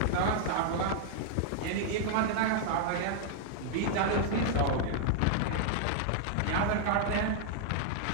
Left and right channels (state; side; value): different; both; correlation -0.01